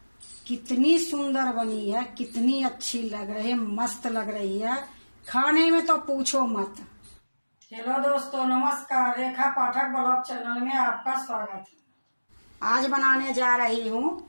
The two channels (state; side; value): inverted; both; correlation -1.00